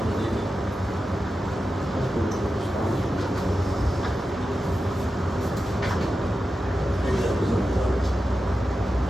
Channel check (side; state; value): both; normal; correlation 0.91